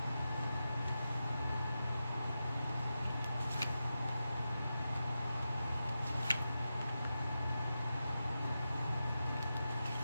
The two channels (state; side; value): inverted; both; correlation -0.90